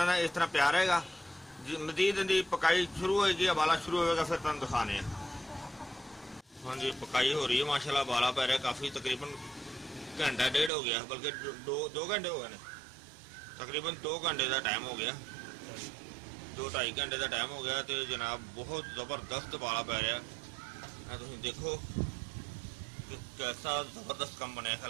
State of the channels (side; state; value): left; drops out; at 10.7 s